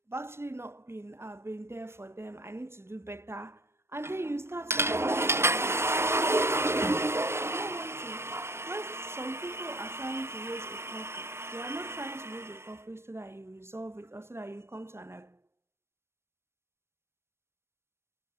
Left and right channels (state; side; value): late; left; 0.12 ms